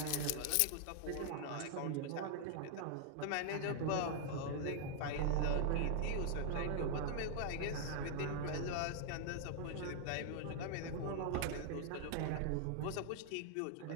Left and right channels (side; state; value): both; different; correlation 0.00